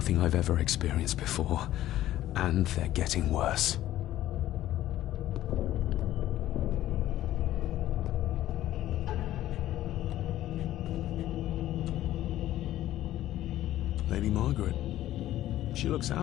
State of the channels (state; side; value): quieter; right; 13.8 dB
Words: I've ever experienced before, and they're getting worse. Lady Margaret. She looks